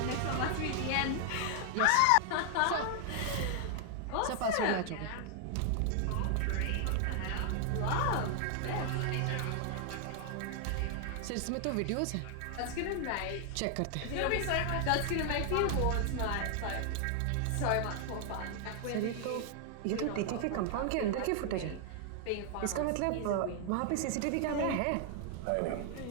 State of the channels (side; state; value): both; different; correlation 0.00